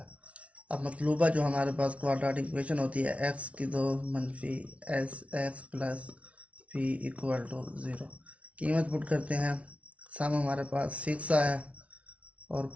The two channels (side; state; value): left; late; 0.064 ms